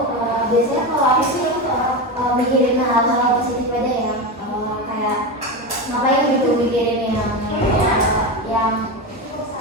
biasanya kalau aku sih mikirin hal-hal positif aja ya, kayak ngapain gitu mikirin yang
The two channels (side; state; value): both; normal; correlation 0.19